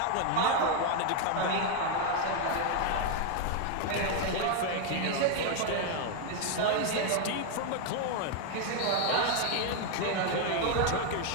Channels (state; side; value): different; both; correlation 0.01